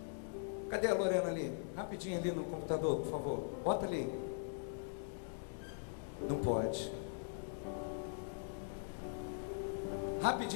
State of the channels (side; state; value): right; silent; digital silence